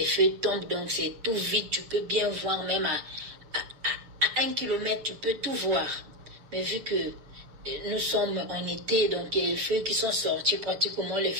feuilles tombent, donc c'est tout vide. Tu peux bien voir, même à 1 kilomètre, tu peux tout voir. Mais vu que nous sommes en été, donc il y a les feuilles qui sont sorties, pratiquement les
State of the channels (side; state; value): left; late; 7.2 ms